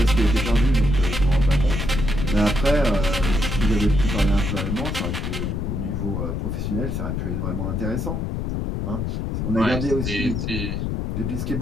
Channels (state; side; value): noise; left; rumble, 2 dB below the sound